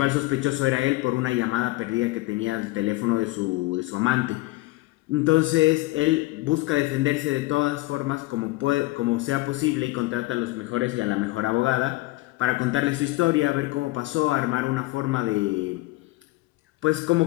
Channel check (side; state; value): right; quieter; 20.1 dB